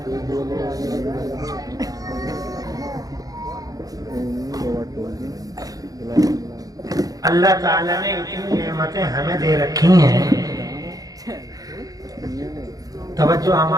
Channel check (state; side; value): late; left; 0.18 ms